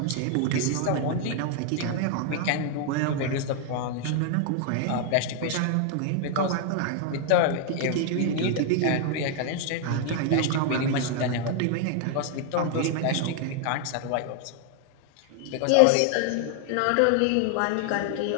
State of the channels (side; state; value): both; different; correlation 0.00